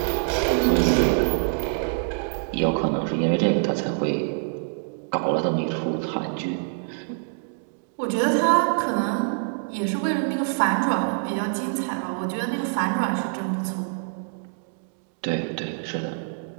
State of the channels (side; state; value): left; silent; digital silence